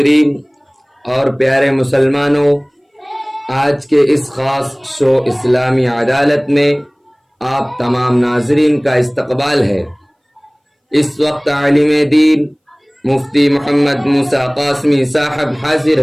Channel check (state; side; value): identical; both; correlation 1.00